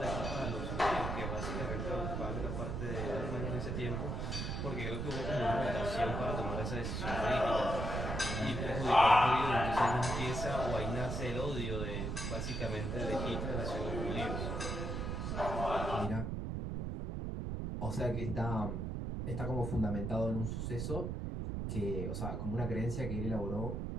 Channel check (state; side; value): noise; right; rumble, 2 dB below the sound